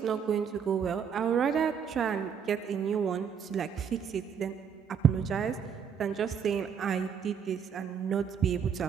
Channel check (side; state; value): left; quieter; 7.3 dB